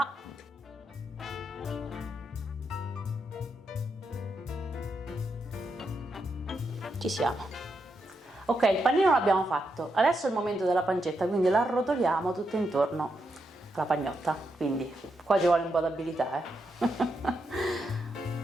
Ci siamo. Ok, il panino l'abbiamo fatto. Adesso è il momento della pancetta, quindi la arrotoliamo tutto intorno alla pagnotta. Quindi qua ci vuole un po' d'abilità,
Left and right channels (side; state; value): both; normal; correlation 0.83